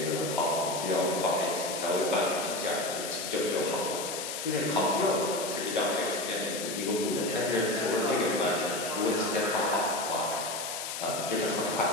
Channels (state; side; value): noise; left; hiss, 5 dB below the sound